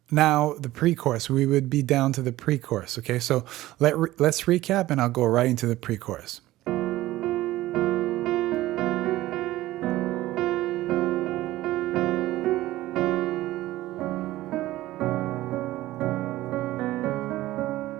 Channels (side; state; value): left; quieter; 16.4 dB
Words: now the pre-chorus, we would be down to the pre-chorus, okay? So let's recap and I'll go right into the pre-chorus.